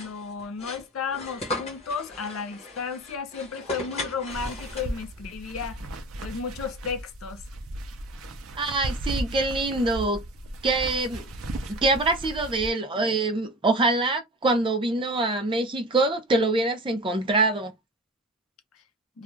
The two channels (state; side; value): normal; both; correlation 0.34